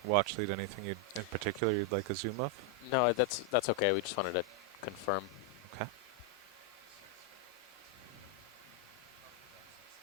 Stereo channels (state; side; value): normal; both; correlation 0.00